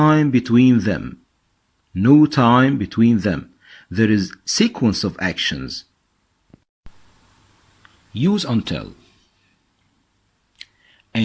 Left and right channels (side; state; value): both; identical; correlation 1.00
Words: between them. No time between them. There is sequence of actions. Use until.